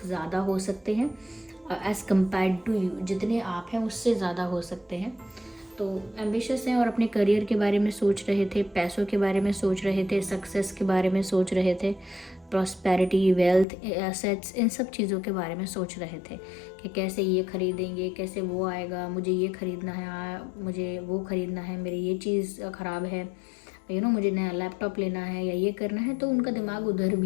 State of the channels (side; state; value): right; drops out; at 13.7 s